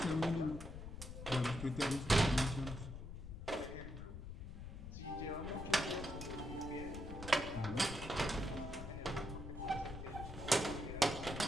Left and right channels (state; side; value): noise; left; rumble, 9 dB below the sound